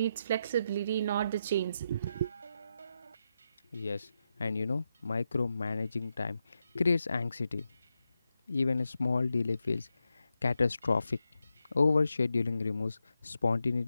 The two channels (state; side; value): inverted; both; correlation -0.85